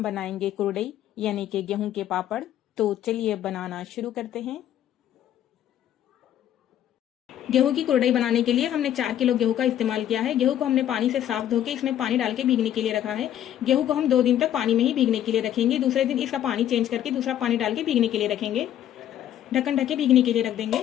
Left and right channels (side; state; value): right; quieter; 11.3 dB